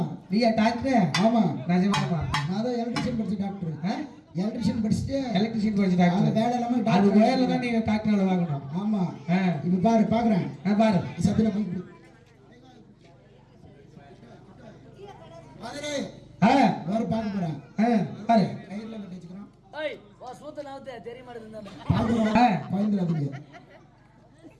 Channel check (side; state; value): both; identical; correlation 1.00